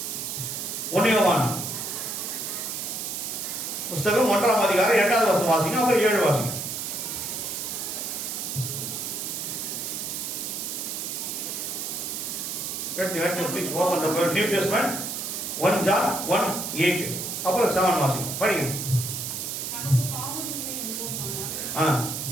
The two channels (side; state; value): right; noise; hiss, 4 dB below the sound